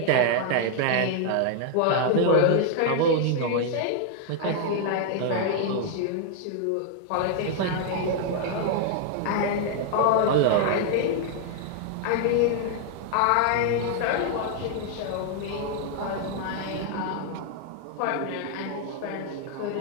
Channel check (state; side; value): different; both; correlation 0.00